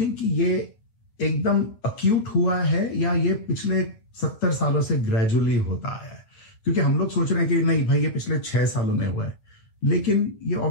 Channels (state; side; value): late; right; 9.2 ms